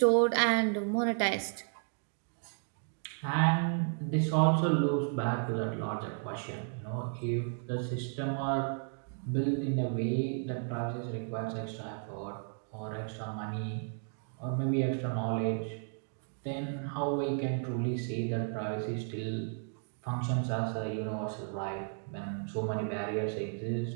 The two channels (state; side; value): silent; left; 55 dB below the other